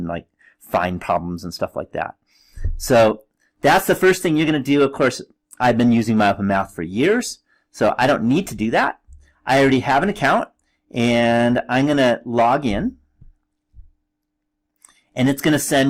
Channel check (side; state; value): both; identical; correlation 1.00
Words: like find problems and stuff like that. So that's the first thing you're going to do. Of course, I've been using MyOpenMath for years, so I don't need to do that. I already have an account, and I'm going to log in, and it's going to send